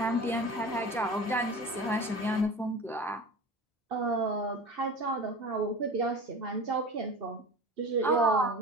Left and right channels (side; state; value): both; normal; correlation 0.35